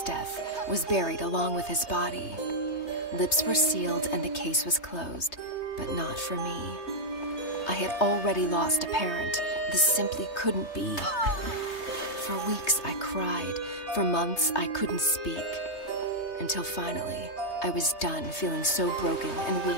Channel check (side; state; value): right; late; 3.2 ms